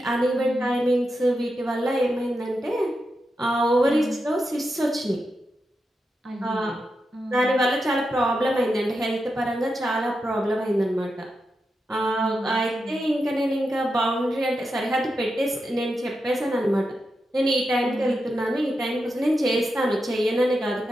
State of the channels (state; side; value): normal; both; correlation 0.87